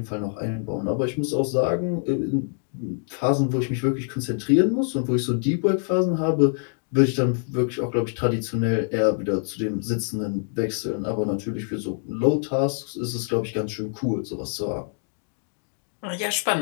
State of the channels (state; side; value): silent; right; digital silence